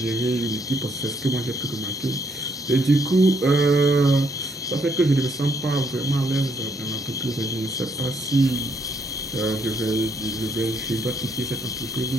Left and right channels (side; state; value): both; normal; correlation 0.72